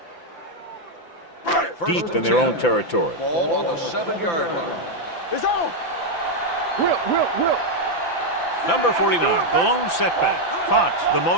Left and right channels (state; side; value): late; right; 5.9 ms